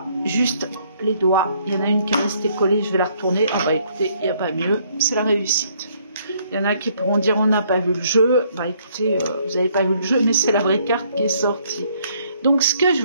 juste les doigts. Il y en a une qui est restée collée, je vais la retourner. Ah bah écoutez, il n'y a pas mieux, c'est la réussite. Il y en a qui pourront dire on n'a pas vu le jeu. Bah écoutez, vous n'avez pas vu le jeu, mais c'est la vraie carte qui est sortie. Donc ce que je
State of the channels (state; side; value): inverted; both; correlation -0.67